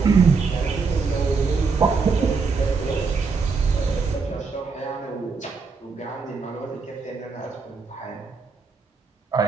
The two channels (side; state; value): left; quieter; 4.8 dB